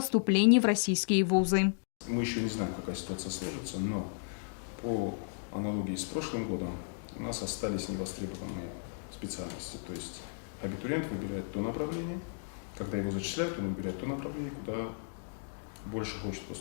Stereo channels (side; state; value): right; silent; digital silence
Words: в российские вузы. Мы еще не знаем, какая ситуация сложится, но по аналогии с прошлым годом у нас остались невостребованные специальности. То есть абитуриент выбирает то направление, когда его зачисляют, он выбирает то направление, куда больше хочет